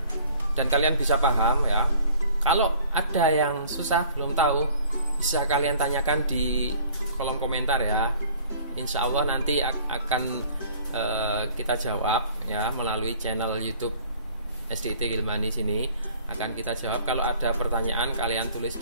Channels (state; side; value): inverted; both; correlation -0.52